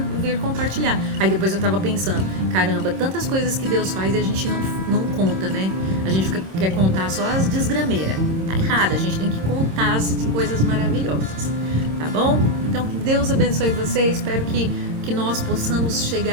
vir compartilhar. Aí depois eu tava pensando, caramba, tantas coisas que Deus faz e a gente não conta, né? A gente quer contar só as desgrameiras. Tá errado, a gente tem que contar as coisas maravilhosas, tá bom? Então, que Deus abençoe você, espero que nós possamos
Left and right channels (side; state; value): left; late; 26 ms